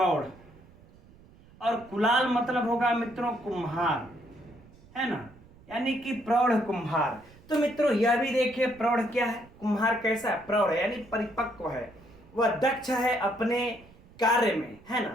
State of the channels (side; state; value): right; noise; rumble, 25 dB below the sound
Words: और कुलाल मतलब होगा मित्रों कुम्हार, है ना, यानी कि प्रौढ़ कुम्हार। तो मित्रों यह भी देखिए प्रौढ़ क्या है, कुम्हार कैसा है, प्रौढ़ है यानी परिपक्व है, वह दक्ष है अपने कार्य में, है